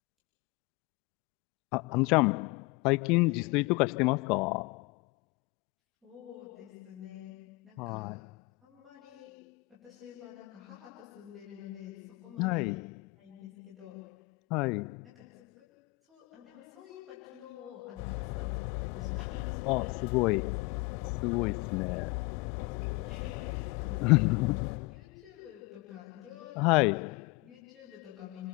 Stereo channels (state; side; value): quieter; right; 24.2 dB